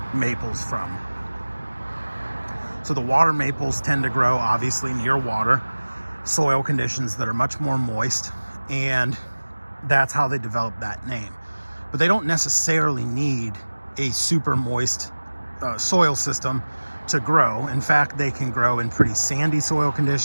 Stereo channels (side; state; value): both; inverted; correlation -1.00